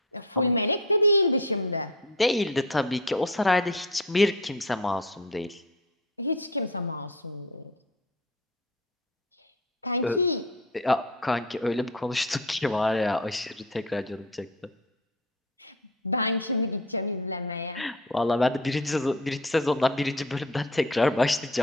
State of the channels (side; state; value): both; normal; correlation 0.33